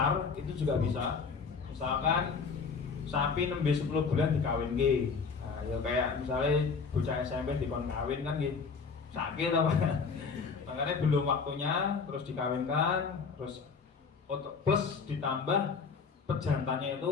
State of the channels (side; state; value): right; quieter; 5.2 dB